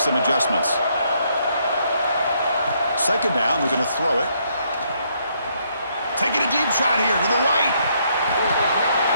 some adjustments. Second down, they're going to throw it. Taking a deep shot here to the right.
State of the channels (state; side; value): inverted; both; correlation -0.72